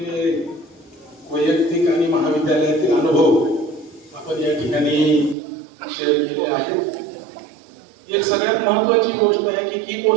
वैयक्तिक आणि महाविद्यालयातील अनुभव आपण या ठिकाणी शेअर केले आहेत. एक सगळ्यात महत्वाची गोष्ट आहे की की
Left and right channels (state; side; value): drops out; left; at 5.4 s